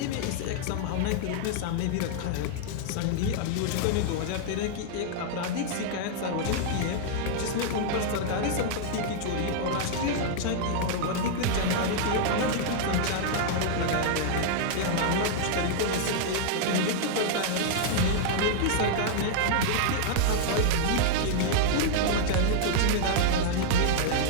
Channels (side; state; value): both; different; correlation -0.01